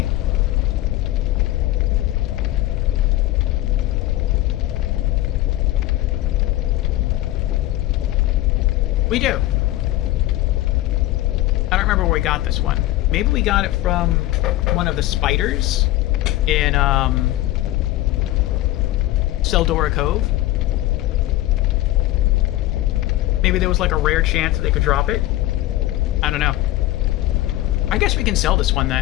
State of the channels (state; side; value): quieter; right; 16.1 dB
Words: We do. I don't remember where we got this one. Maybe we got it from one of the spiders in Seldora Cove. Maybe there was like a rare chance that they could drop it. I don't know. I guess we can sell this one